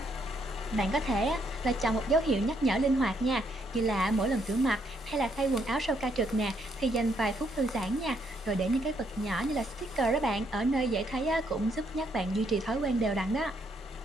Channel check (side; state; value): both; normal; correlation 0.73